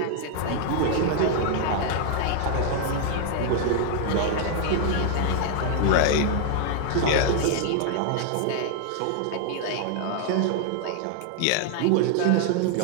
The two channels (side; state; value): both; different; correlation 0.00